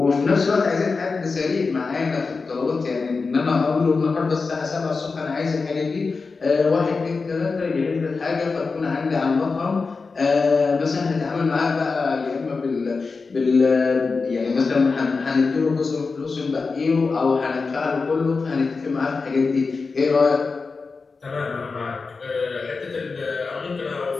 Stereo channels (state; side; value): quieter; right; 4.4 dB